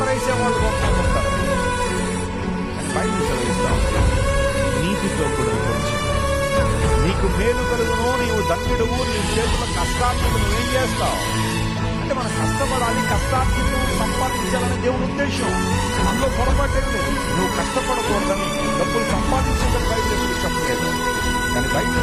కొంతమంది ఉంటారు. బైబిల్ చదివిస్తాం, నీతితో కూడా నీకు మేలు కలుగును, నీవు ధన్యుడువు, నీ చేతుల కష్టార్జితం నువ్వేం చేస్తావు అంటే మనం కష్టపడాలి, కష్టార్జితం సంపాదించాలని దేవుని ఉద్దేశం. అందులో పొరపాటేది, నువ్వు కష్టపడకూడదని డబ్బులు సంపాదించేదని బయట ఎప్పుడు చెప్పలేదు. కానీ బయట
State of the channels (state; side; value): identical; both; correlation 1.00